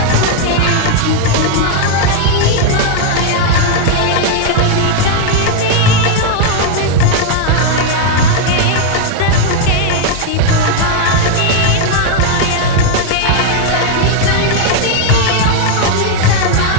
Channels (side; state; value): both; different; correlation 0.00